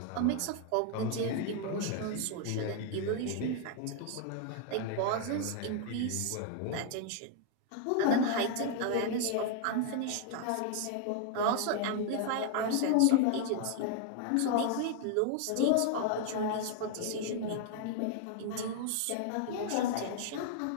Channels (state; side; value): different; both; correlation 0.00